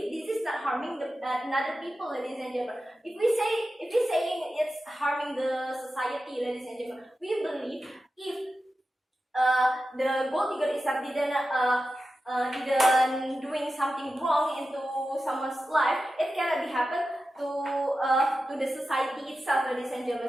this is not harming another people, ladies and gentlemen. If we saying it's harming the society, ladies and gentlemen, we believe if the gold digger itself didn't doing something wrong into someone's life, it cannot be happen to the society itself, ladies and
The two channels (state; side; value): normal; both; correlation 0.92